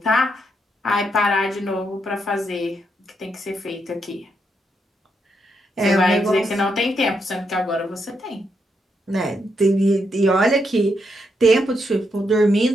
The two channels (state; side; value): normal; both; correlation 0.80